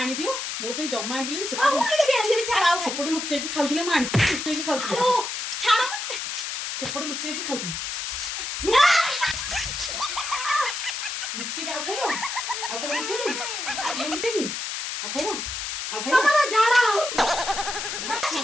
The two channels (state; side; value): noise; left; hiss, 4 dB below the sound